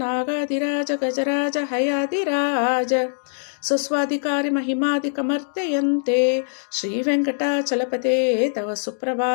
नागादिराज गजराज हयादिराज स्वस्वाधिकारी महिमादिकमर्तयन्ते श्रीवेङ्कटाचलपते तव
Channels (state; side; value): silent; right; digital silence